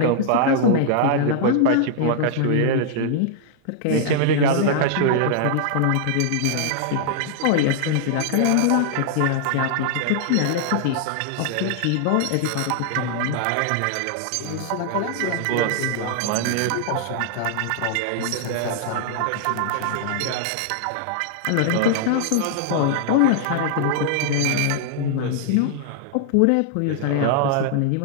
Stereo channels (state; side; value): different; both; correlation -0.01